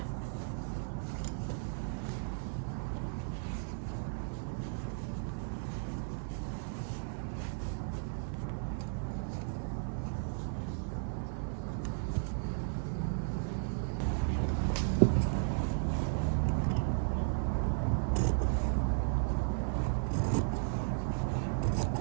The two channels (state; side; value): silent; left; 55 dB below the other